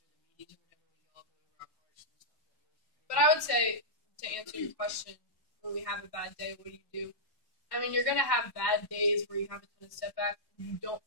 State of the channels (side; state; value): right; late; 1.1 ms